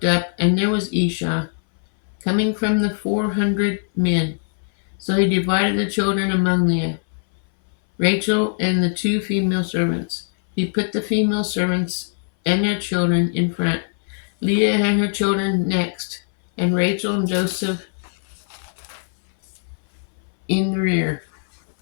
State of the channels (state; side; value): silent; right; 61 dB below the other